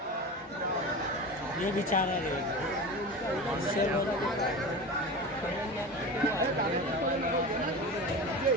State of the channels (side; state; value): both; normal; correlation 0.29